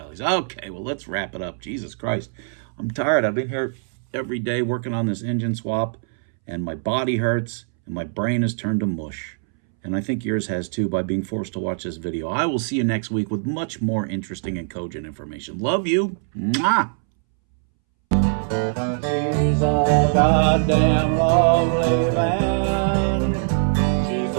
Okay, well, let's wrap it up. Jesus Christ. I'm tired. I've been here every day working on this engine swap, and my body hurts, and my brain has turned to mush. And I think yours has too by being forced to watch this video. I will see you next week with much more interesting and cogent information. Love you. Mwah! She's a goddamn lovely man.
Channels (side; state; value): left; silent; 64 dB below the other